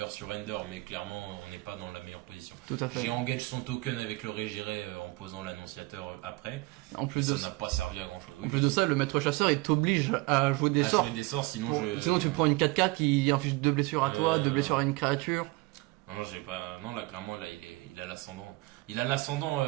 surrender, mais clairement on n'est pas dans la meilleure position. Tout à fait. J'ai engagé son token avec le Régiré en posant l'annonciateur après. En plus Ça de n'a pas servi à grand chose. En plus de ça, le maître chasseur il t'oblige à jouer des à sorts. jouer des sorts, sinon Sinon tu prends une 4-4 qui inflige 2 blessures à toi, 2 blessures à une créature. Non, j'ai pas. Non, là, clairement, là, il a l'ascendant. Il a l'ascendant,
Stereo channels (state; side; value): quieter; left; 23.0 dB